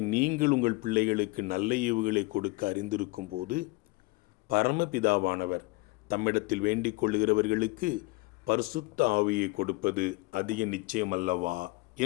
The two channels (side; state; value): right; quieter; 24.0 dB